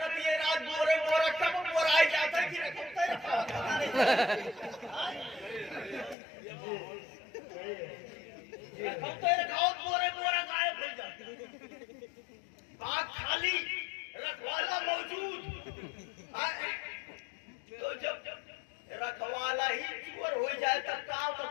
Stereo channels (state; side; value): drops out; right; at 6.2 s